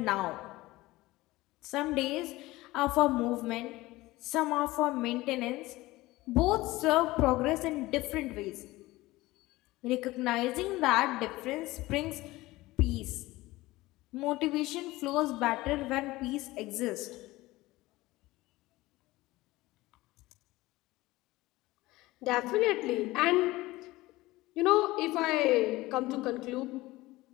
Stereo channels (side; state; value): right; quieter; 19.1 dB